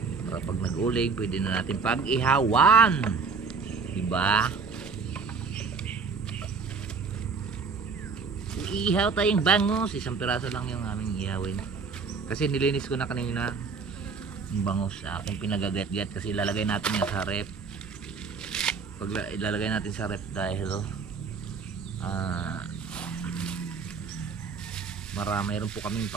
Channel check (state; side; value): quieter; left; 5.1 dB